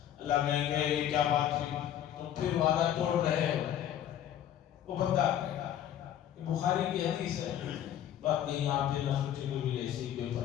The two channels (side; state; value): right; quieter; 10.8 dB